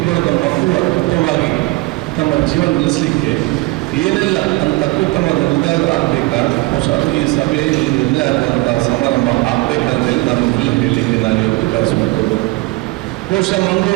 ಬರೆದ ಮಕ್ಕಳು ಅತ್ಯುತ್ತಮವಾಗಿ ತಮ್ಮ ಜೀವನ ನಡೆಸಲಿಕ್ಕೆ ಏನೆಲ್ಲ ಅತ್ಯುತ್ತಮ ನಿರ್ಧಾರ ಆಗಬೇಕಾ, ಬಹುಶಃ ಈ ಸಭೆಯಲ್ಲಿ ನಿರ್ಣಯ ಆಗುವಂತಹ ಸಮಾರಂಭ ಆಗಬೇಕಂತೇಳಿ ನಾನು ಇಲ್ಲ ಹೇಳಲಿಕ್ಕೆ ನಾನು ಇವತ್ತು ಬಯಸುವಂಥದ್ದು. ಬಹುಶಃ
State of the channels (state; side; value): quieter; left; 22.2 dB